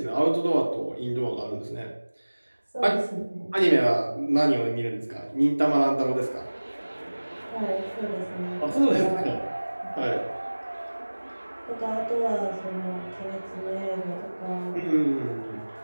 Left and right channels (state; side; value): inverted; both; correlation -1.00